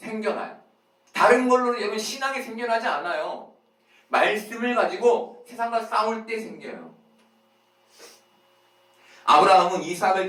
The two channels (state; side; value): identical; both; correlation 1.00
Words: 다른 걸로는 여러분 신앙이 생겨나지 않아요. 말씀을 가지고 세상과 싸울 때 생겨요. 아브라함은 이삭을